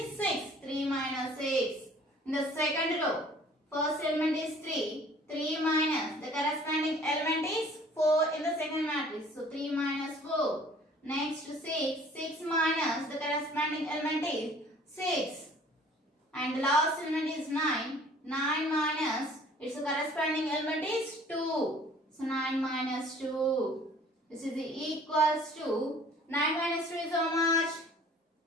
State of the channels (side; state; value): both; normal; correlation 0.53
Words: 6. 3 minus 6. In the second row, first element is 3. 3 minus, the corresponding element is 4 in the second matrix. So, 3 minus 4. Next to 6. 6 minus the corresponding element is 6. And the last element is 9. 9 minus its corresponding element is 2. So 9 minus 2. This is equals to 9 minus 2 is how much?